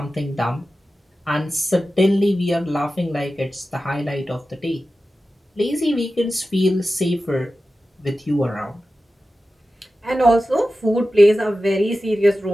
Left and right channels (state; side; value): normal; both; correlation 0.93